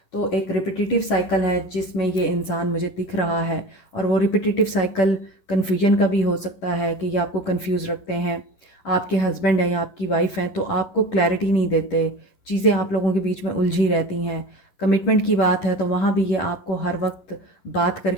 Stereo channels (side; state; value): right; late; 11 ms